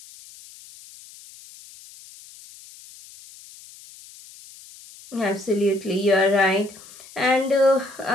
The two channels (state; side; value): noise; left; hiss, 21 dB below the sound